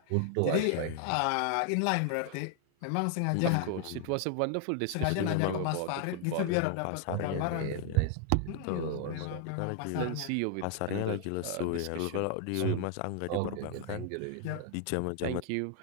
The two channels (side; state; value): both; different; correlation 0.00